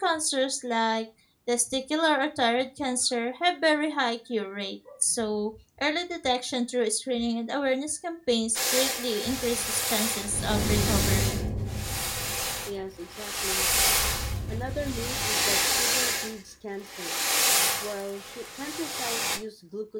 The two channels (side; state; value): both; identical; correlation 1.00